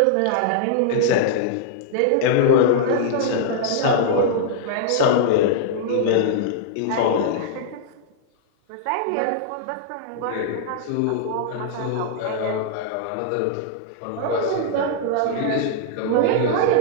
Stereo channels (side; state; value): both; different; correlation -0.02